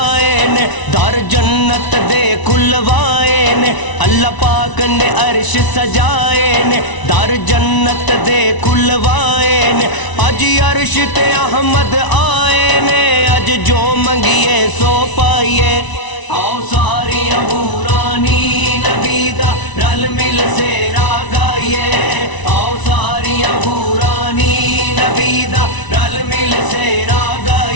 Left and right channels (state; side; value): late; right; 1.0 ms